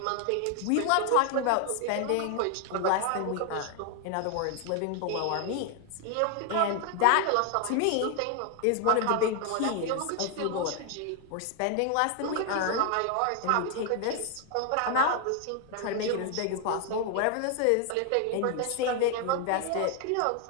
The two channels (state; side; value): different; both; correlation 0.00